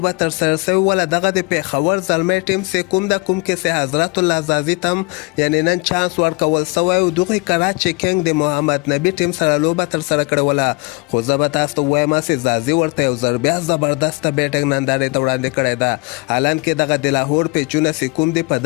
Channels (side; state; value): right; quieter; 26.9 dB